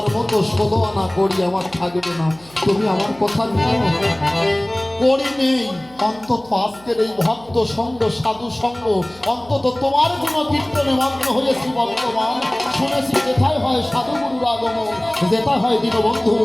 মতো 16 আনা কড়ি আমার থাকবে না। তুমি আমার কথা নিও, কড়ি নেই, অন্তত আজকের এই ভক্ত সঙ্গ, সাধু সঙ্গ, অন্তত তোমার কোনো কীর্তনে মগ্ন হয়েছি বর্তমান। শুনেছি যেথায় হয় সাধুগুরুর আগমন, যেটা হয় দীনবন্ধুর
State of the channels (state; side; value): noise; right; hum, 25 dB below the sound